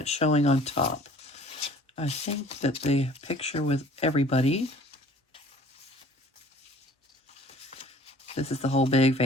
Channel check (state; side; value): normal; both; correlation 0.51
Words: showing on top? I think that the picture with everybody. This is the whole big